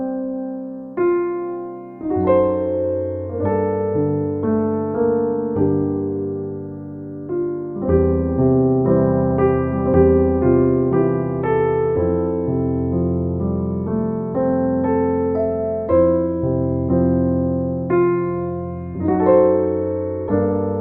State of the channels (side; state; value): both; identical; correlation 1.00